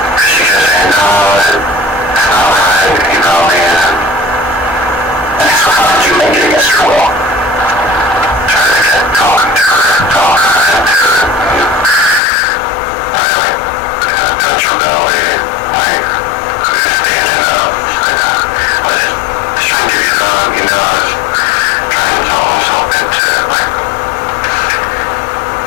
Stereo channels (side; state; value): right; drops out; at 12.2 s